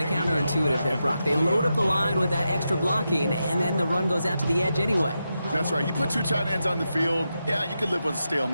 of counterintuitive there, Brock. They load up the line with that extra blocking, and then the run goes out to the edge anyway. That's right. You put 2 tight ends on the field, yeah, you can live with a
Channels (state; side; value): inverted; both; correlation -0.88